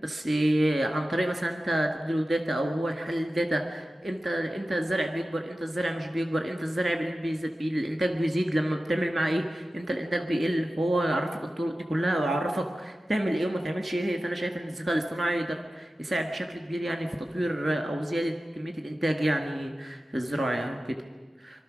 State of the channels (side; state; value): both; normal; correlation 0.94